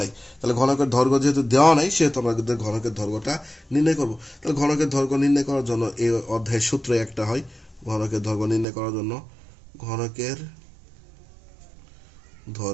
নাই। তাহলে ঘনকের দৈর্ঘ্য যেহেতু দেওয়া নাই, সেহেতু আমরা ঘনকের দৈর্ঘ্যটা নির্ণয় করব। তাহলে ঘনকের দৈর্ঘ্য নির্ণয় করার জন্য এই অধ্যায়ের সূত্র একটা হয়। ঘনকের দৈর্ঘ্য নির্ণয় করার জন্য ঘনকের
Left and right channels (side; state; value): left; drops out; at 8.7 s